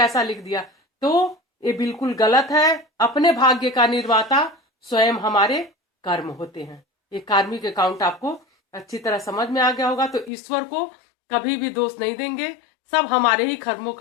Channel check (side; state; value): right; drops out; at 10.3 s